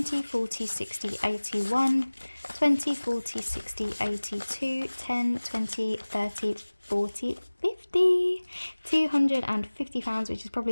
40, 60, 81, 20, 40, 60, 82, 10, 20, 30, 40, 50, £250, which is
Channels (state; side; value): inverted; both; correlation -1.00